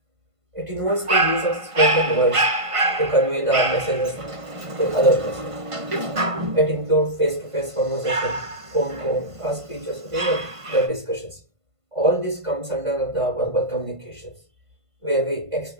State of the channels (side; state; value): left; late; 1.5 ms